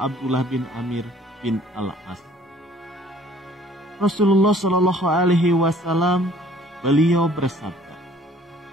bin Amir bin Al-As. Rasulullah Shallallahu Alaihi Wasallam beliau bersabda,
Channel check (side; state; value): both; normal; correlation 0.56